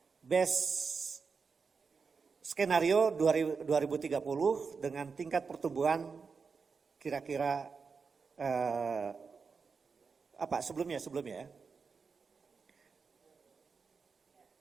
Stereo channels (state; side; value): quieter; left; 5.2 dB